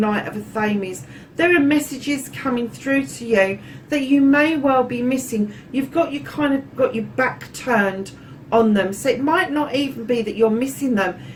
of Athames. There are messages coming through to you that you may well be missing. You've got your back turned on them. So it might not even be that you're missing them.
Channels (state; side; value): identical; both; correlation 1.00